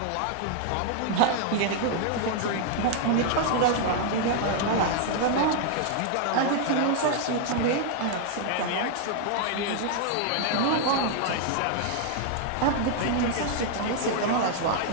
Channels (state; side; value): different; both; correlation 0.00